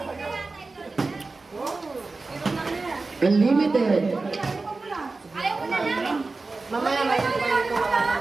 Unlimited. Ayaw ko na lang.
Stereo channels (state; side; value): quieter; left; 3.7 dB